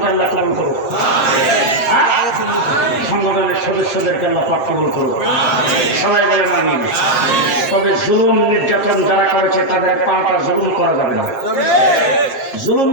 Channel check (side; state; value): right; late; 7.4 ms